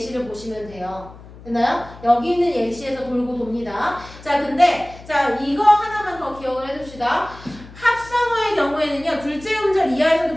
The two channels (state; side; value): noise; left; hum, 19 dB below the sound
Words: 보시면 돼요. 됐나요? 여기 있는 예시에서 돌고 돕니다. 자, 근데 자, 이거 하나만 더 기억을 해둡시다. 합성어의 경우에는요, 둘째 음절 이하에서도